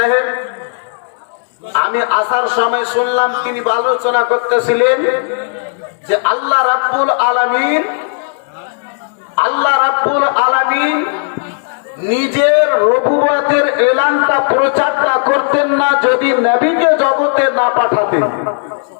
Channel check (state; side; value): silent; right; 71 dB below the other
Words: আমি আসার সময় শুনলাম তিনি আলোচনা করতেছিলেন যে আল্লাহ রাব্বুল আলামিন নিজের রবুবতের এলানটা প্রচারটা করতেন না যদি নবীকে জগতে না পাঠাতেন।